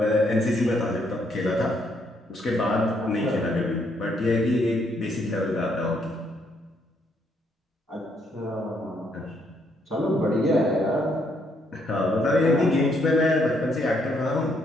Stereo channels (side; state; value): both; normal; correlation 0.72